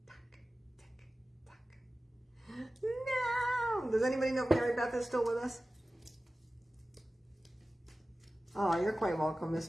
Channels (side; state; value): both; normal; correlation 0.96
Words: No! Does anybody know if Mary Beth is still with us? Oh, you're quite welcome, Miss